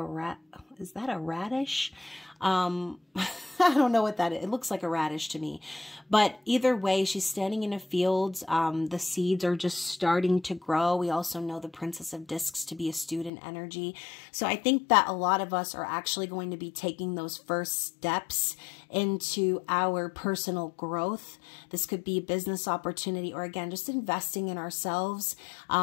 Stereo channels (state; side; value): drops out; right; at 13.3 s